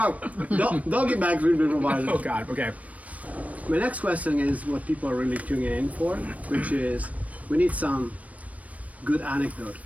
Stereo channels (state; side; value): late; left; 0.068 ms